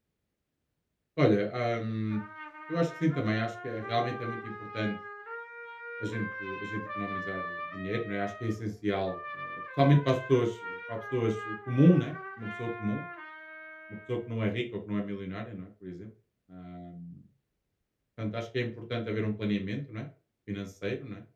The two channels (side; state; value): both; identical; correlation 1.00